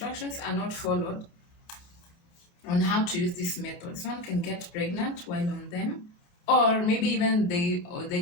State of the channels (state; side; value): late; right; 29 ms